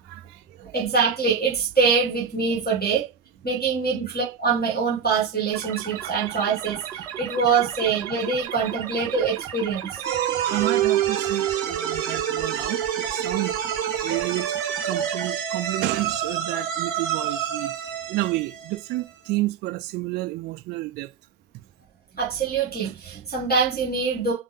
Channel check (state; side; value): quieter; left; 6.7 dB